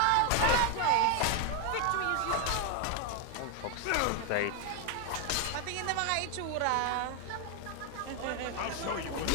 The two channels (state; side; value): different; both; correlation 0.01